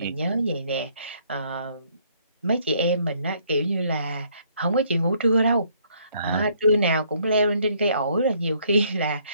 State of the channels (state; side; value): inverted; both; correlation -0.66